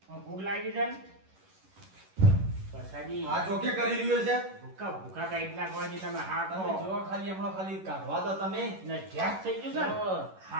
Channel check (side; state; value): left; late; 11 ms